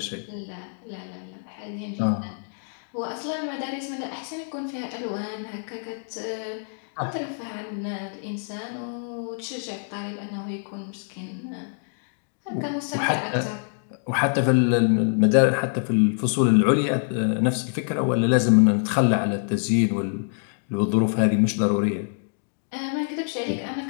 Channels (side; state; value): right; silent; digital silence